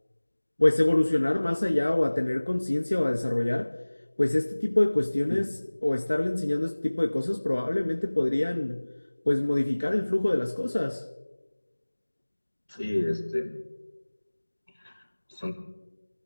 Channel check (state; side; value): inverted; both; correlation -1.00